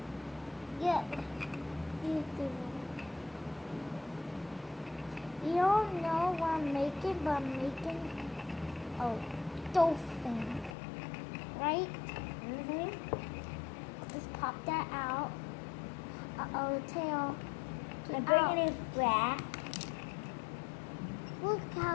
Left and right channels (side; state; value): right; drops out; at 10.8 s